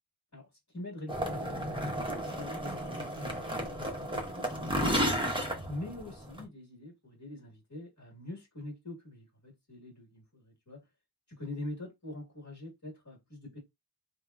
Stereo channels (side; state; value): both; normal; correlation 0.34